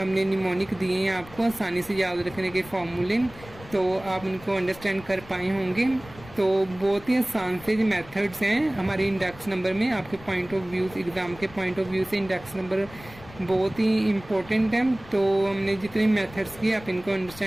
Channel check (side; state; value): left; noise; rumble, 19 dB below the sound